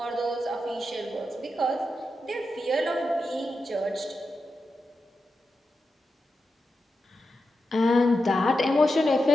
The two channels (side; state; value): both; normal; correlation 0.89